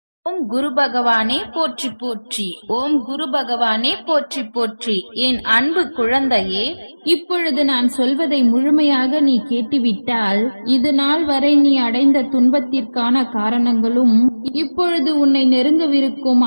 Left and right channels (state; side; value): inverted; both; correlation -1.00